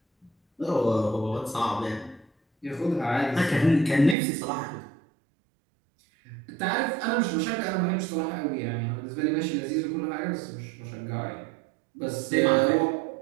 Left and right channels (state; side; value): drops out; left; at 4.2 s